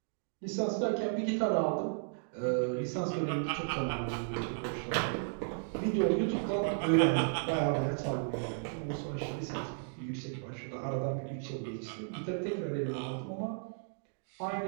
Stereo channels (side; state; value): left; silent; digital silence